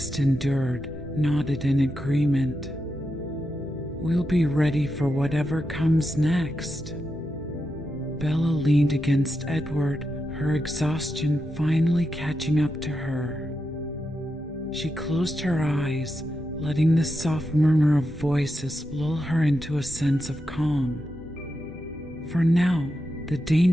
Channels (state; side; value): normal; both; correlation 0.87